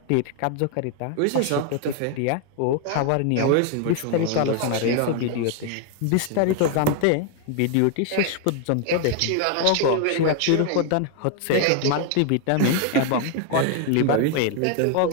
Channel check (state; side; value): different; both; correlation 0.01